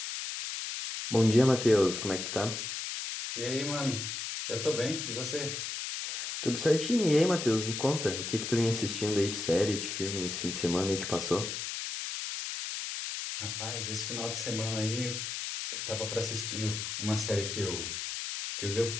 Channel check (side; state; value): left; noise; hiss, 4 dB below the sound